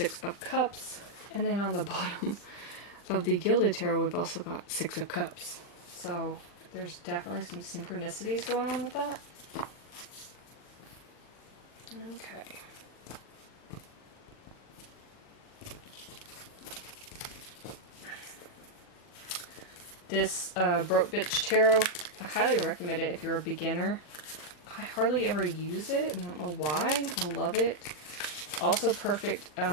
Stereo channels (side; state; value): right; late; 40 ms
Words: of Cups. And then on the bottom of the Gilded Tarot, we've also got 6 of Cups. So there's definitely some synchronicities going on with that. Okay. This Broke Bitch Tarot, I highly recommend it if you're a beginner. I hardly ever use it. I don't know why. I love it. Also perfect